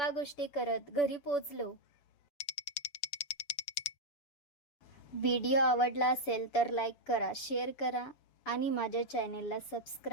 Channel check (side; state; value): right; late; 7.0 ms